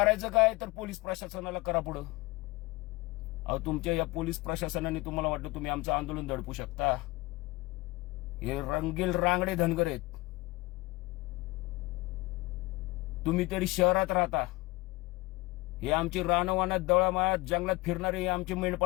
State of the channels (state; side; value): quieter; right; 22.2 dB